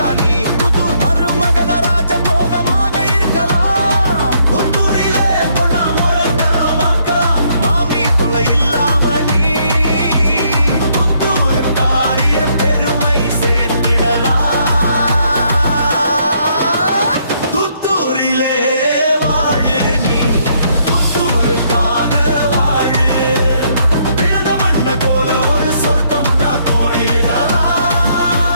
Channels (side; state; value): both; inverted; correlation -0.71